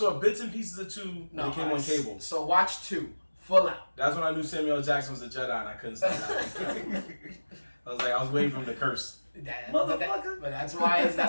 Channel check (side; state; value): both; inverted; correlation -1.00